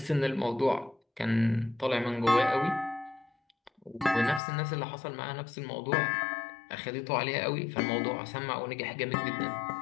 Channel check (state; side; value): drops out; right; at 4.4 s